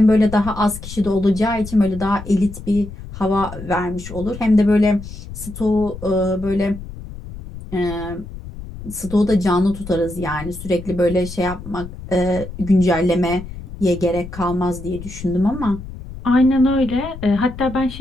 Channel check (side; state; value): left; noise; rumble, 12 dB below the sound